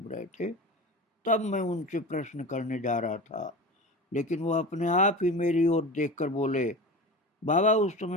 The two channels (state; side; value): normal; both; correlation 0.31